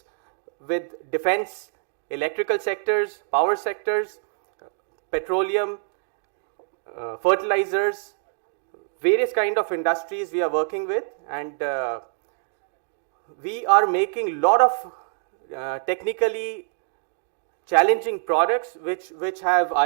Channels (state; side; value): silent; left; digital silence